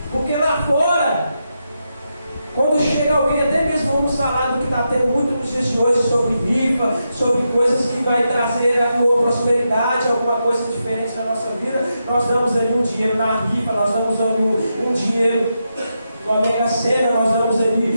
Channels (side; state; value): both; inverted; correlation -0.86